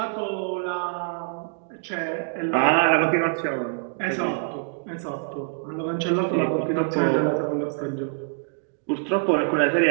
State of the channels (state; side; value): silent; left; digital silence